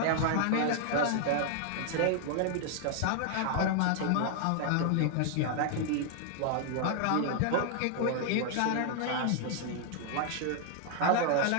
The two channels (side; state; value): both; different; correlation 0.00